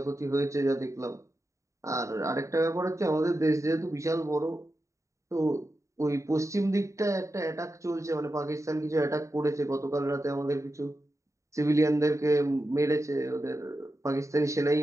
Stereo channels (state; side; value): late; left; 0.15 ms